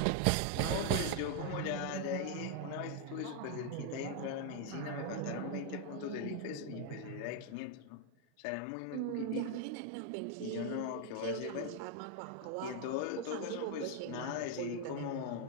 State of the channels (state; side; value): different; both; correlation 0.00